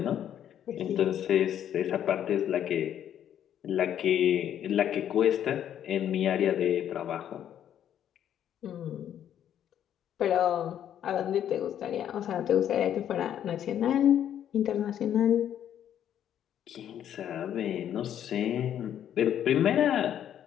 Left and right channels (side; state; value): right; quieter; 10.2 dB